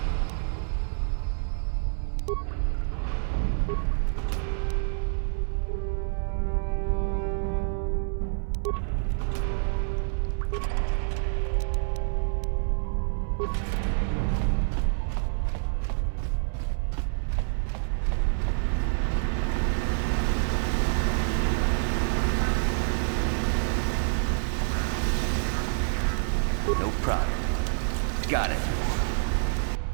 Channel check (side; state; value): left; silent; digital silence